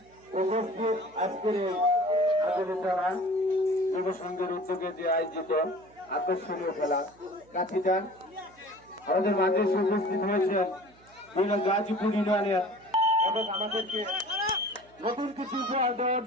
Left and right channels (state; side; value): noise; right; hum, 28 dB below the sound